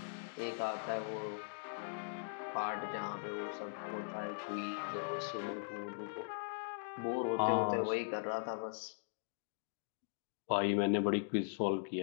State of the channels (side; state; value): right; silent; digital silence